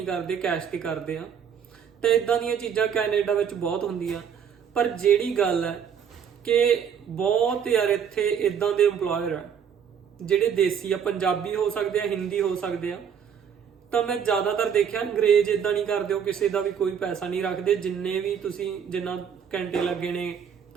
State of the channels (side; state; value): left; quieter; 7.7 dB